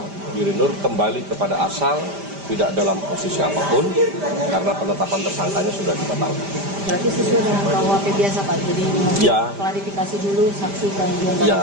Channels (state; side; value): late; left; 5.0 ms